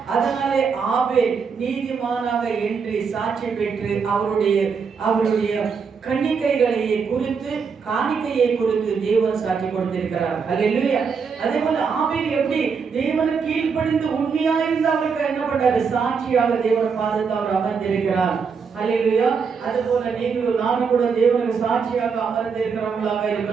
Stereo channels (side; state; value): left; quieter; 5.8 dB